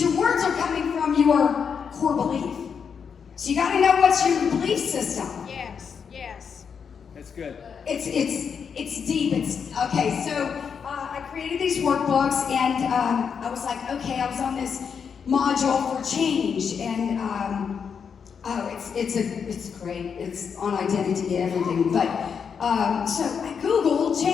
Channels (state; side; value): quieter; right; 6.6 dB